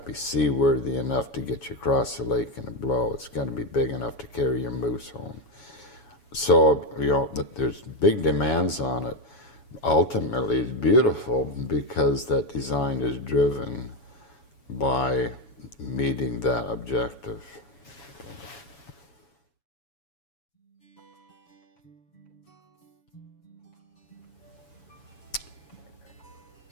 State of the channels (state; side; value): late; right; 7.1 ms